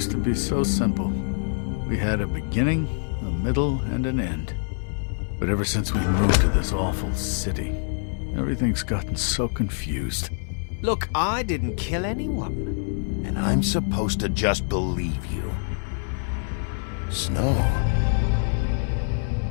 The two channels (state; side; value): silent; right; 61 dB below the other